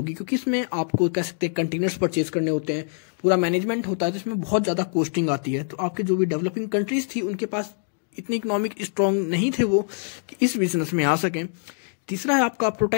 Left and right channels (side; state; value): right; silent; 62 dB below the other